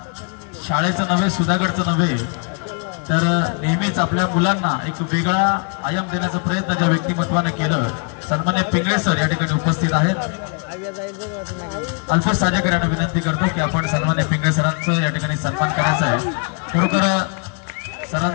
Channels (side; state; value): right; quieter; 36.9 dB